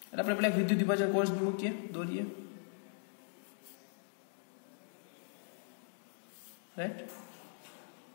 એટલે આપણે પેલા વિદ્યુત વિભાજન કોષ મૂકીએ, દોરીએ, રાઈટ?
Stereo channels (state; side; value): silent; right; digital silence